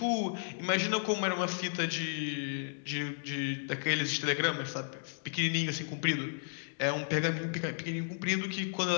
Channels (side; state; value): right; silent; digital silence